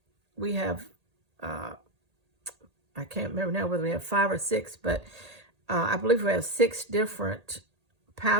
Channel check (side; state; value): left; late; 1.8 ms